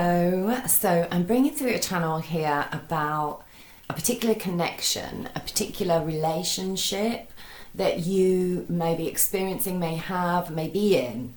So I'm bringing through a channel here about a particular connection, a particular relationship that you may be experiencing, may have, may be in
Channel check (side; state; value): both; identical; correlation 1.00